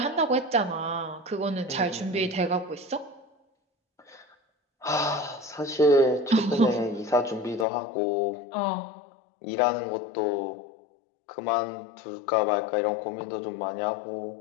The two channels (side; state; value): right; drops out; at 7.7 s